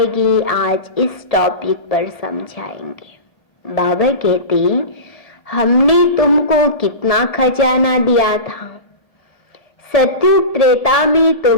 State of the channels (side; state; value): right; late; 1.7 ms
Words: आज इस टॉपिक पर समझाएंगे। बाबा कहते हमने तुमको कितना खजाना दिया था। सत्युग त्रेता में